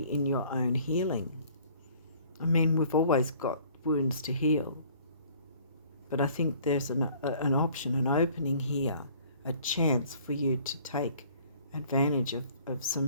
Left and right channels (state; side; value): inverted; both; correlation -0.55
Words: in your own healing. I mean, we've always got wounds to heal, but I think there's an option, an opening here, a chance for you to take advantage of some